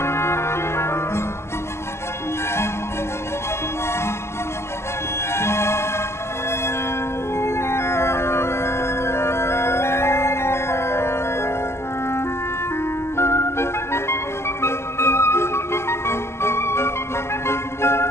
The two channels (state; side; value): late; right; 0.13 ms